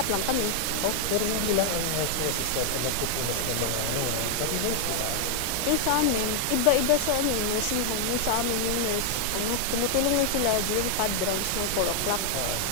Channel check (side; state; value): both; different; correlation 0.00